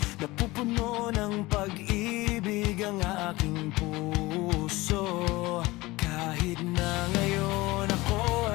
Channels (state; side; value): quieter; right; 20.7 dB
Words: Napupuno ng pag-ibig ang aking puso. Kahit na ngayon ako